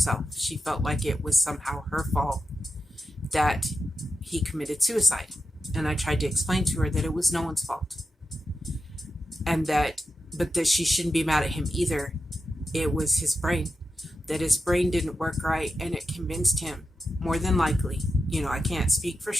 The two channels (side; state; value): both; normal; correlation 0.89